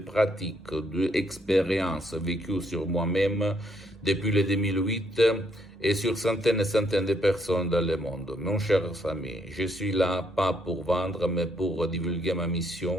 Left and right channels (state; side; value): normal; both; correlation 0.71